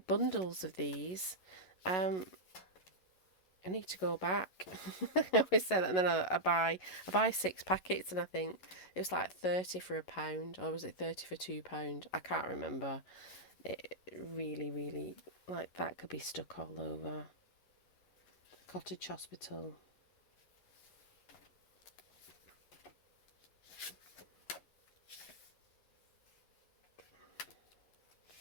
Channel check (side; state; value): right; late; 11 ms